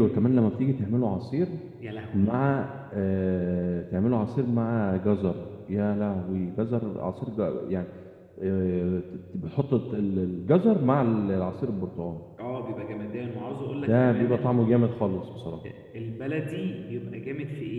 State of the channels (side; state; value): both; identical; correlation 1.00